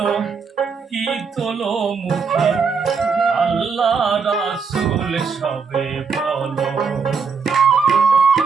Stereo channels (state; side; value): quieter; left; 5.5 dB